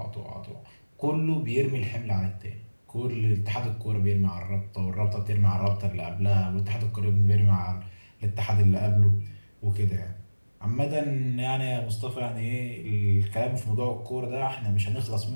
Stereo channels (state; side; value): inverted; both; correlation -1.00